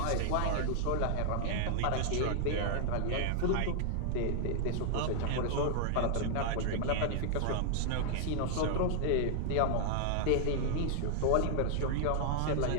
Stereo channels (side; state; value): both; different; correlation -0.01